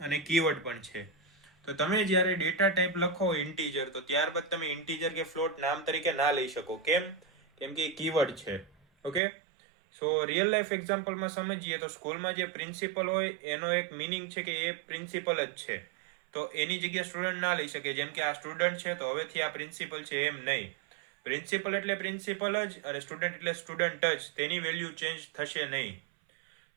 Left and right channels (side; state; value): left; drops out; at 9.2 s